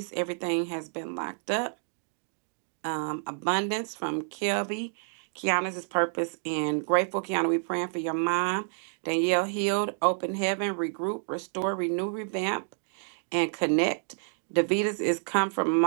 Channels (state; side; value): silent; left; 59 dB below the other